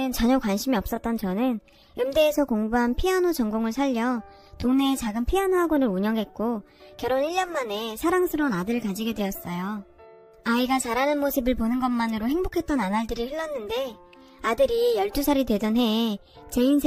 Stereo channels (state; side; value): identical; both; correlation 1.00